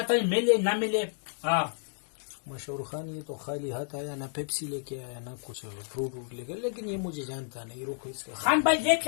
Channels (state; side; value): silent; right; digital silence